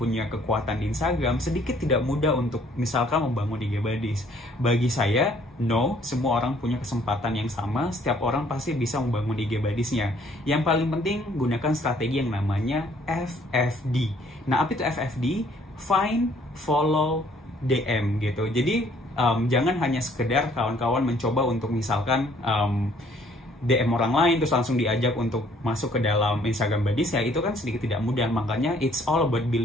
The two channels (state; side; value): normal; both; correlation 0.61